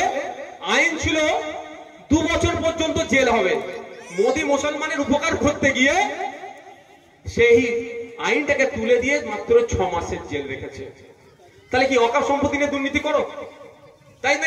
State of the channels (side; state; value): both; identical; correlation 1.00